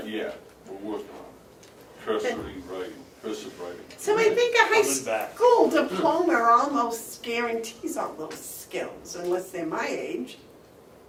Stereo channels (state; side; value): identical; both; correlation 1.00